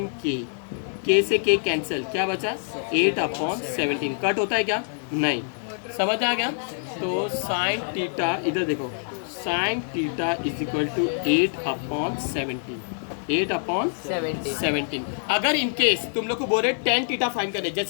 K से K कैंसिल, क्या बचा 8/17, कट होता है क्या, नहीं, समझ आ गया। तो साइन थीटा, इधर देखो, sine theta is equal to 8/17, 8/17। अगर इन केस तुम लोग को बोल रहे tan थीटा फाइंड करने,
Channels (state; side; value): silent; right; 61 dB below the other